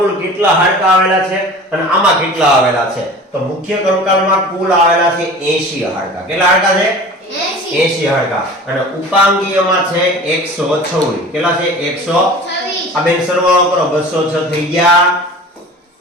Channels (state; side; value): normal; both; correlation 0.40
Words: કેટલા હાડકા આવેલા છે અને આમાં કેટલા આવેલા છે? તો મુખ્ય કંકાલમાં કુલ આવેલા છે 80 હાડકા. કેટલા હાડકા છે? 80 હાડકા. અને ઉપાંગીયમાં છે 126. કેટલા છે? 126. આ બેન સરવાળો કરો. 206 થઈ ગયા.